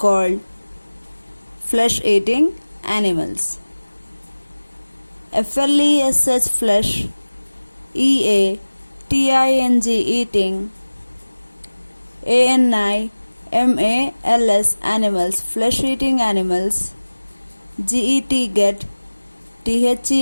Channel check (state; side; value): inverted; both; correlation -1.00